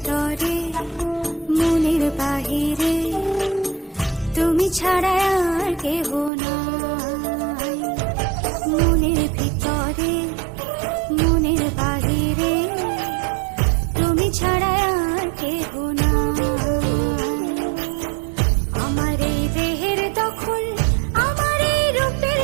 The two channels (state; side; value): drops out; left; at 6.3 s